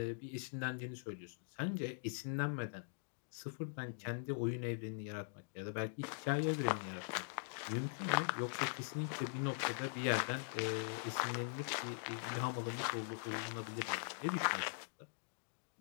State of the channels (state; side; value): silent; right; digital silence